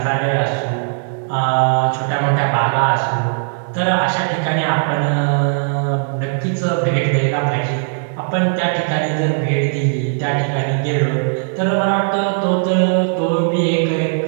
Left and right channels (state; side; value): silent; left; digital silence